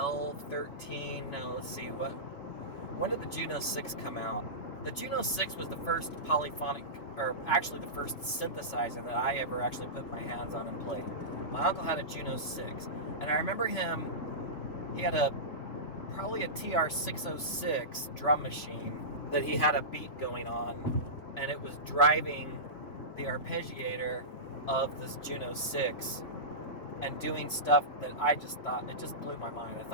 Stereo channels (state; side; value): late; right; 3.4 ms